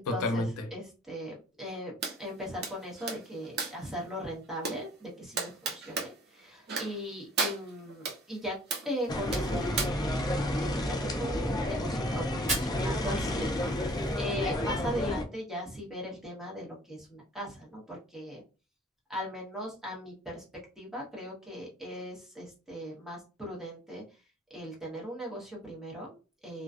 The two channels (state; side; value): normal; both; correlation 0.54